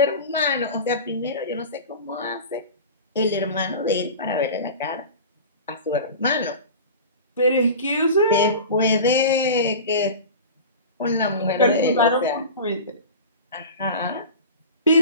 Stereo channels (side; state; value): both; inverted; correlation -0.33